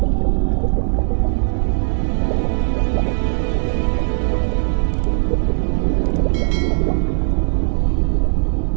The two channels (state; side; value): silent; left; digital silence